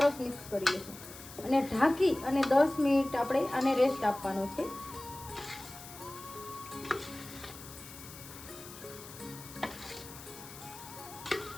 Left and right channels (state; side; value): noise; left; hiss, 15 dB below the sound